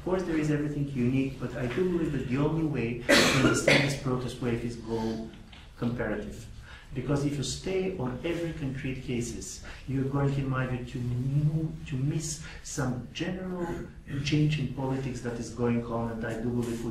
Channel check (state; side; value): identical; both; correlation 1.00